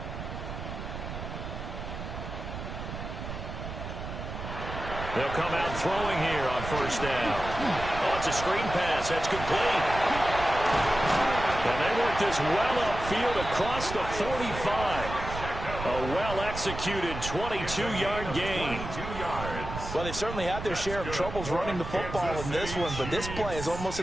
They'll come out throwing here on first down. Oh, it's a screen pass. That's complete. And they work this well upfield across the 45. A well-executed 22-yard gain. Well, they certainly had their share of troubles running the football in this one, but this play is almost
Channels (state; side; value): noise; right; rumble, 8 dB below the sound